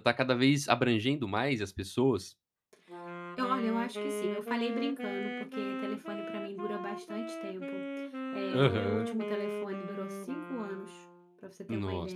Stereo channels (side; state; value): both; identical; correlation 1.00